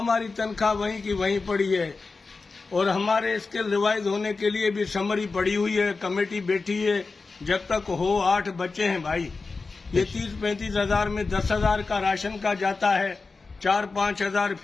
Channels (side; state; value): right; quieter; 4.1 dB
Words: तनख्वाह वहीं की वहीं पड़ी है और हमारे स्किल रिवाइज होने के लिए भी समरी पड़ी हुई है, कमेटी बैठी है। जब तक हो 8 बच्चे हैं भाई, ये 30-35 हजार में 10 हजार का राशन का जाता है, 4-5 हजार